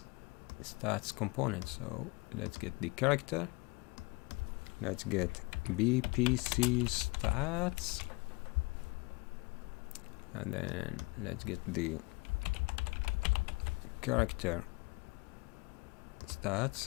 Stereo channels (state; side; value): quieter; right; 26.5 dB